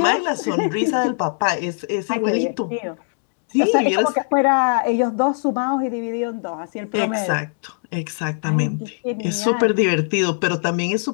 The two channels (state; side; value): silent; right; 65 dB below the other